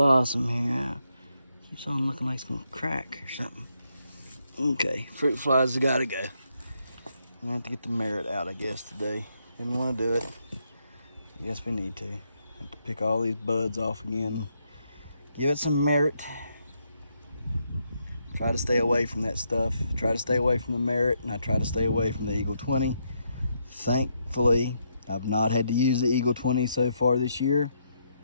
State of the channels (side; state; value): both; inverted; correlation -0.78